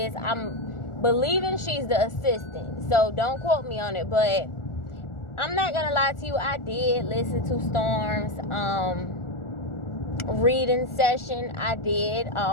I'm believing she's the assistant, so don't quote me on it, but I'm not gonna lie to you, I did listen to Storm's reading session. I did,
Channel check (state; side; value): late; right; 1.4 ms